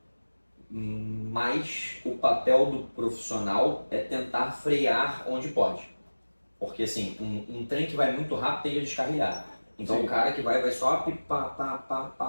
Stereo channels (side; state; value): both; inverted; correlation -1.00